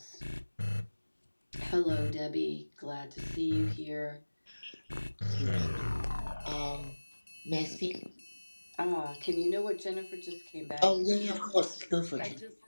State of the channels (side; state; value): both; inverted; correlation -1.00